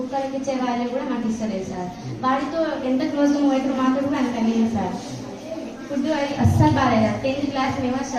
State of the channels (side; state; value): both; identical; correlation 1.00